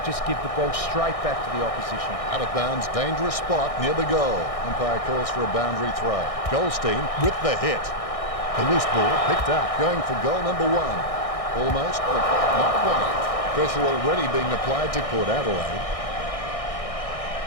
just give the ball straight back to the opposition. Out of bounds, dangerous spot near the goal. Umpire calls for a boundary throw. Goldstein with the hit. The loose ball picked up, going for goal number 1. Almost, but not quite. Pressure already being applied to Port Adelaide.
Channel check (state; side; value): late; right; 1.6 ms